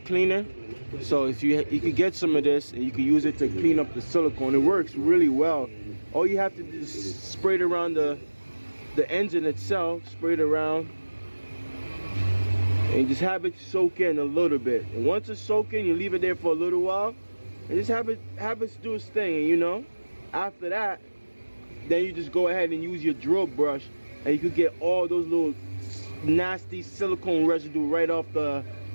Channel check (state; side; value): inverted; both; correlation -1.00